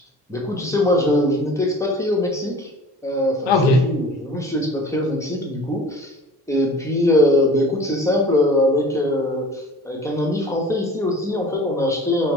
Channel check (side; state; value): both; normal; correlation 0.44